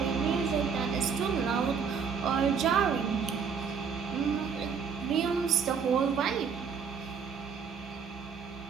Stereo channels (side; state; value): left; quieter; 6.3 dB